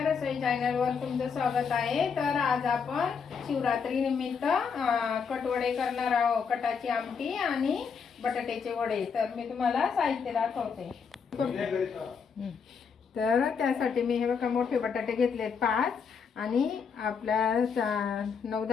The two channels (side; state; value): right; quieter; 6.1 dB